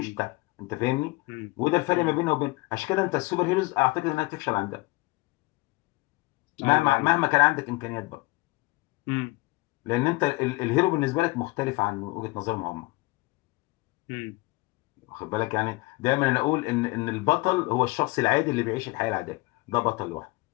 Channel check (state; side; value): quieter; right; 23.4 dB